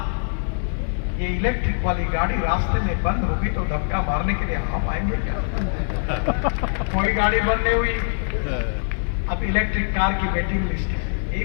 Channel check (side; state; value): right; silent; 59 dB below the other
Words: ये इलेक्ट्रिक वाली गाड़ी रास्ते में बंद होगी तो धक्का मारने के लिए आप आएंगे क्या? कोई गाड़ी बंद नहीं हुई। अब इलेक्ट्रिक कार की वेटिंग लिस्ट है। यही